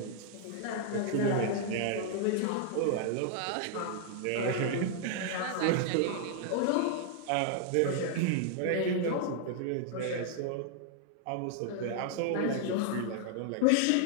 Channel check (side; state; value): both; different; correlation 0.00